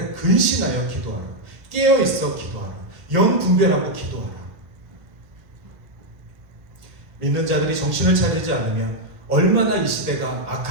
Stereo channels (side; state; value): left; late; 1.2 ms